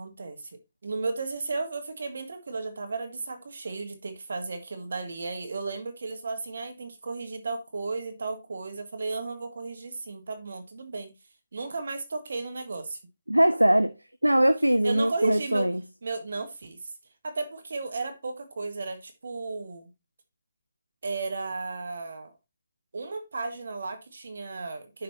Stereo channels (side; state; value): both; inverted; correlation -0.96